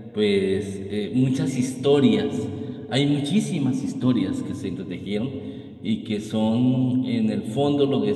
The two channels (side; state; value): both; identical; correlation 1.00